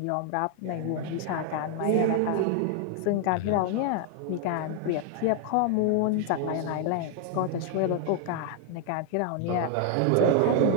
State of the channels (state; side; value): different; both; correlation 0.00